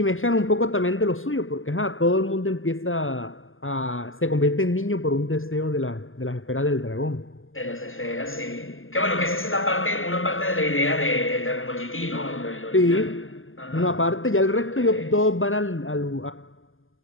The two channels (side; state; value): right; late; 0.59 ms